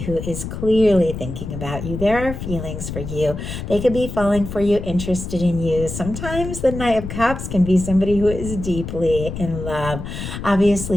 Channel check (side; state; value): left; noise; rumble, 7 dB below the sound